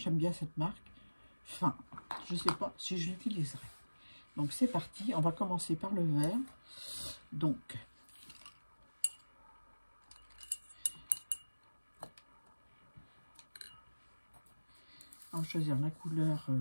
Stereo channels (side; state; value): both; inverted; correlation -1.00